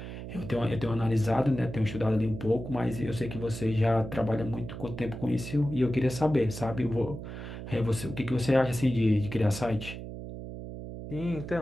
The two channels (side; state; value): right; noise; hum, 9 dB below the sound